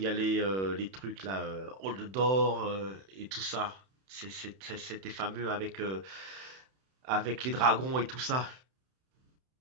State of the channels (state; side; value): late; left; 31 ms